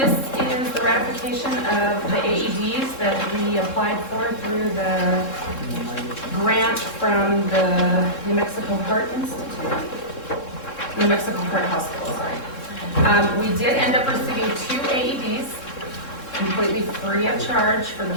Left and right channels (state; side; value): late; right; 3.7 ms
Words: is the ratification of the AEDs that we applied for through the grant from the New Mexico Heart Institute. New Mexico Heart Hospital, sorry. We did end up receiving 2 AEDs completely free of charge for the